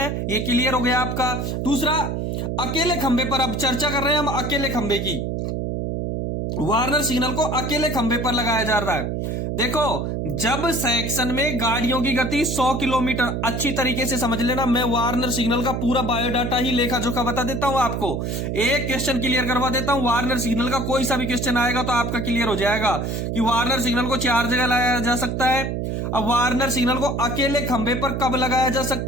ये क्लियर हो गया आपका। दूसरा, अकेले खंभे पर अब चर्चा कर रहे हैं हम अकेले खंभे की। वार्नर सिग्नल को अकेले खंभे पर लगाया जा रहा है। देखो, जब सेक्शन में गाड़ियों की गति 100 किलोमीटर, अच्छी तरीके से समझ लेना, मैं वार्नर सिग्नल का पूरा बायोडाटा ही लेखा जोखा बता देता हूं आपको। एक क्वेश्चन क्लियर करवा देता हूं, वार्नर सिग्नल का कोई सा भी क्वेश्चन आएगा तो आपका क्लियर हो जाएगा कि वार्नर सिग्नल को 4 जगह लगाया जा सकता है। अब वार्नर सिग्नल को अकेले खंभे पर कब लगाया जा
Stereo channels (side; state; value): right; noise; hum, 2 dB below the sound